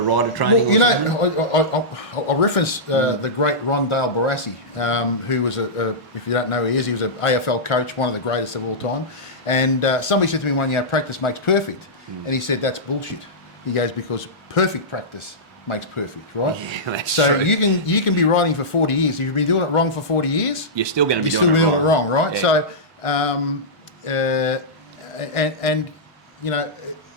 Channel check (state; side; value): normal; both; correlation -0.14